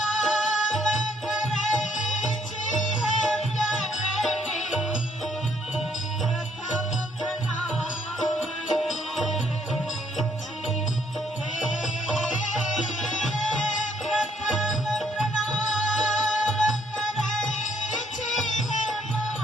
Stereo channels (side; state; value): both; normal; correlation 0.67